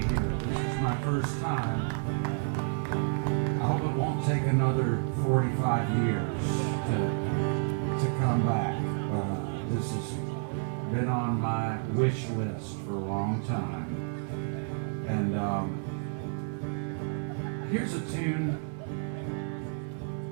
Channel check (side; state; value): left; silent; 57 dB below the other